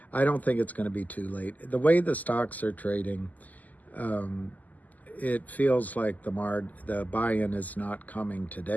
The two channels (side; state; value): right; late; 0.080 ms